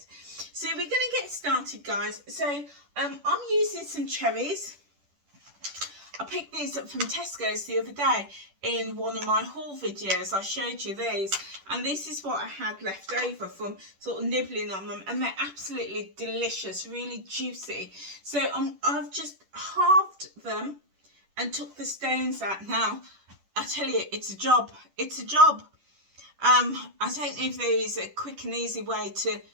So we're going to get started, guys. So I'm using some cherries. I picked these up from Tesco's the other day in one of my haul videos. I showed you these, and this is what I had left over from sort of nibbling on them, and they're absolutely delicious, really juicy. So I've just halved them and took the stones out. Now I tell you, it's a job. It's a job. I don't know if there is a quick and easy way to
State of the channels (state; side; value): late; left; 10 ms